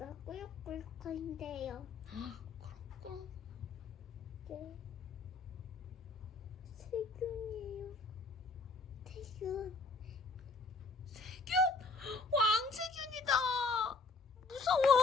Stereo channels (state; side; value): quieter; right; 3.8 dB